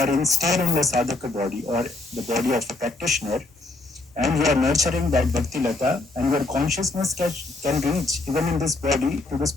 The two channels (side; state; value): right; quieter; 3.1 dB